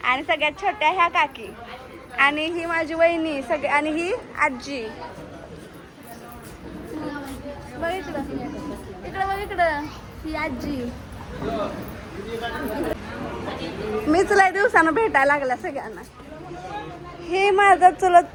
आणि सगळ्यात छोट्या ह्या काकी. आणि ही माझी वहिनी सगळे. आणि ही आजी. बघ इकडं, इकडं बघ इकडं, ही आजी. मीच लय दिवसानं भेटायला लागल्या सगळ्यांना. हे माझं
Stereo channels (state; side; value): identical; both; correlation 1.00